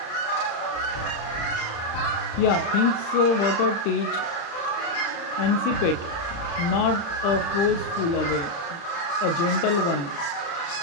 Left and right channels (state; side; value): late; right; 35 ms